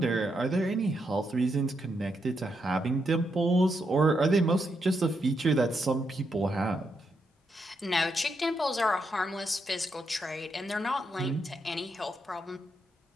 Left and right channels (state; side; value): normal; both; correlation 0.81